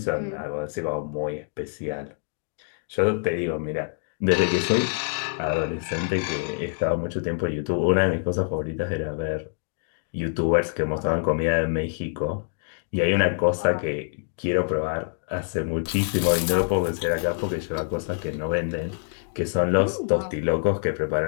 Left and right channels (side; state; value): right; silent; digital silence